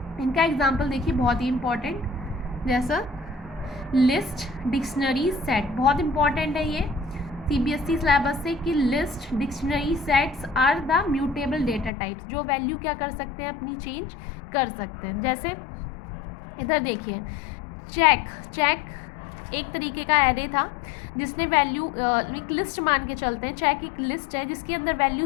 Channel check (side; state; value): right; drops out; at 11.9 s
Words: इनका एग्जाम्पल देखिए, बहुत ही इंपॉर्टेंट, जैसा लिस्ट, डिक्शनरी, सेट। बहुत इंपॉर्टेंट है ये सीबीएसई सिलेबस से कि list, dictionary, sets are the mutable data types, जो वैल्यू क्या कर सकते हैं? अपनी चेंज कर सकते हैं। जैसे इधर देखिए, चेक एक तरीके का एरे था जिसने वैल्यू, एक लिस्ट मान के चलते हैं, चेक एक लिस्ट है जिसके अंदर वैल्यू